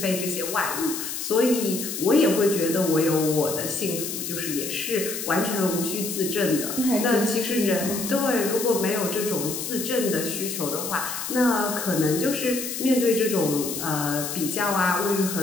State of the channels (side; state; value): left; noise; hiss, 5 dB below the sound